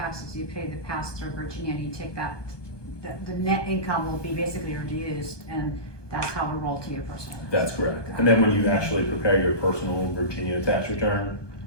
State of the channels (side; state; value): right; late; 1.2 ms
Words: you pay the pass-through Virginia, and you take that, the net income will be basically reduced, and that's how it roll to your personal. That's correct. And then when you actually prepare your personal Virginia tax return,